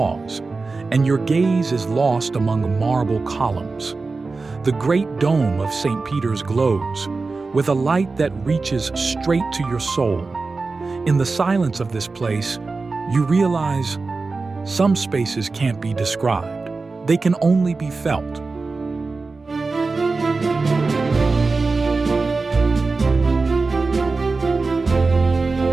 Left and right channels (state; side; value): quieter; left; 3.9 dB